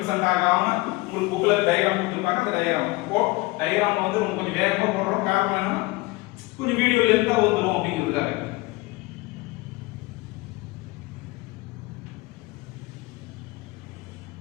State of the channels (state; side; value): quieter; right; 22.6 dB